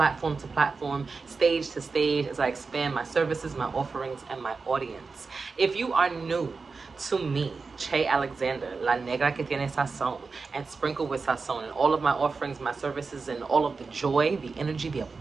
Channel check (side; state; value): left; quieter; 4.5 dB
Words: to platform, stage to stage, as I expand my services, my offerings, and my audience. If you are new to me, Che Alexander, La Negra que tiene sazón, and Sprinkle with Sazon, and all of my offerings, my services, and all of the joy, the energy, the